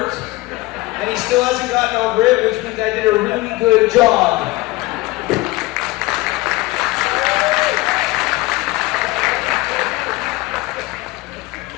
and he still hasn't gotten over it, which means I did a really good job.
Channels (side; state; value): right; quieter; 20.6 dB